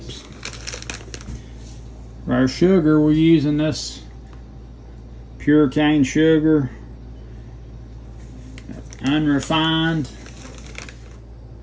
For our sugar, we're using this pure cane sugar, unrefined.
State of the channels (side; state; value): both; identical; correlation 1.00